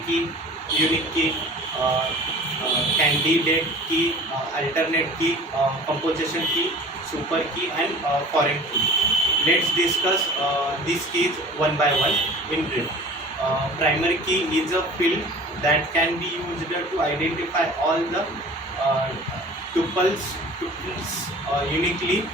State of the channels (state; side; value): normal; both; correlation 0.42